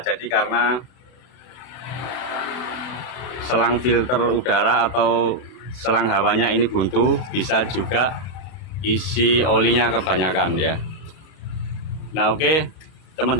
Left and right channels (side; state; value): right; late; 32 ms